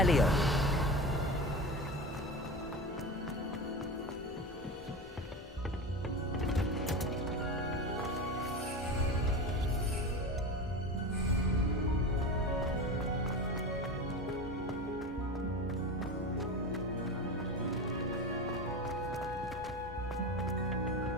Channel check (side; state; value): both; normal; correlation 0.26